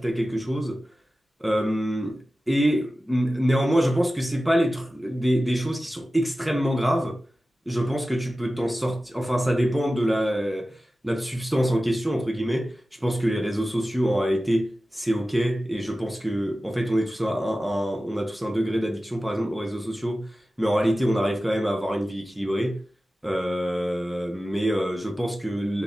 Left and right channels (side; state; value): both; normal; correlation 0.95